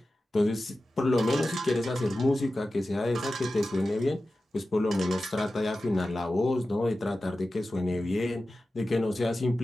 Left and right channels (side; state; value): both; normal; correlation 0.94